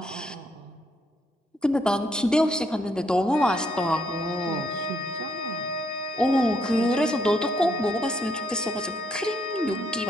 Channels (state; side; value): normal; both; correlation 0.73